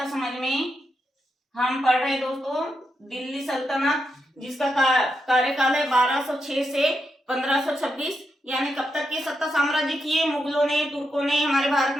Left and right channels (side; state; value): both; normal; correlation 0.84